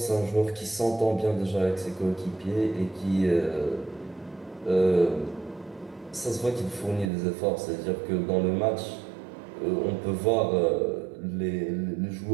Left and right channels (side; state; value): left; drops out; at 7.1 s